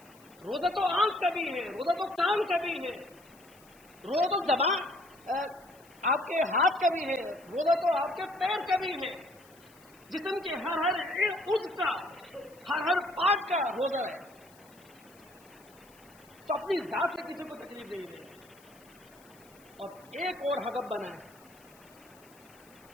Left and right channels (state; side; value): noise; left; hiss, 26 dB below the sound